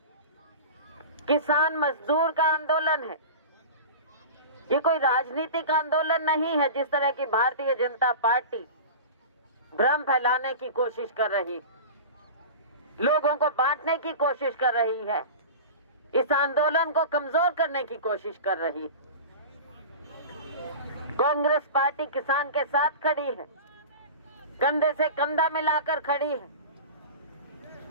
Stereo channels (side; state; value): both; inverted; correlation -0.32